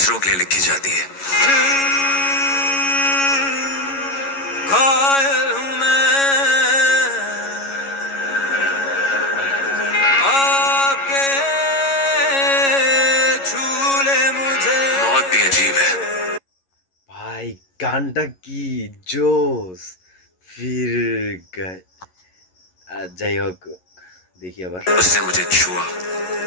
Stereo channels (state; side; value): late; right; 11 ms